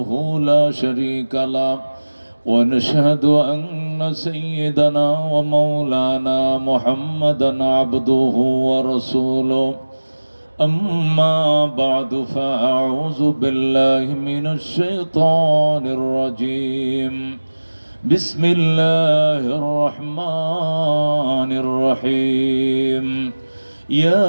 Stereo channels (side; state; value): both; inverted; correlation -1.00